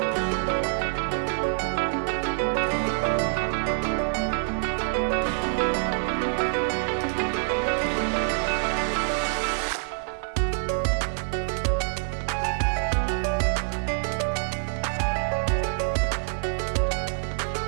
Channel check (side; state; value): left; silent; 61 dB below the other